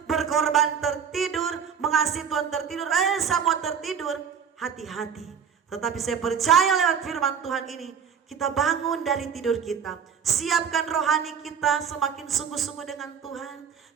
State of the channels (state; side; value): quieter; left; 7.2 dB